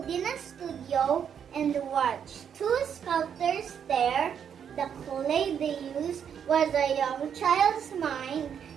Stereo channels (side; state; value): left; quieter; 8.0 dB